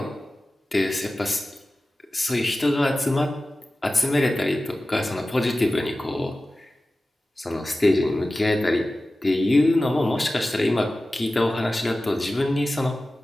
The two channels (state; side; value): normal; both; correlation 0.95